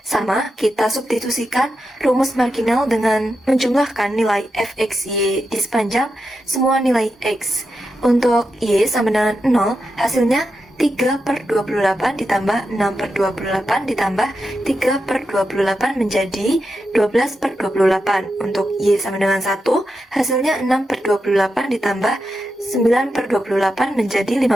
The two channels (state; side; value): normal; both; correlation 0.88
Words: kita substitusikan rumus marginal dengan menjumlahkan nilai fxy di sepanjang semua nilai X. Untuk Y sama dengan 0, hasilnya 3 per 28 ditambah 6 per 28 ditambah 3 per 28 menjadi 12 per 28. Untuk Y sama dengan 1, hasilnya 6 per 28 ditambah 9 per 28 menjadi